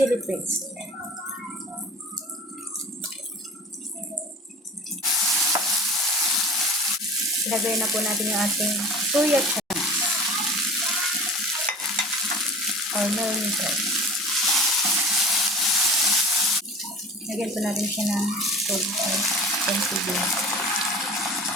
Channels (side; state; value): both; normal; correlation 0.39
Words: paste. Ilagay na po natin yung ating soya chunks or meal maker. Lagyan po natin siya ng konti.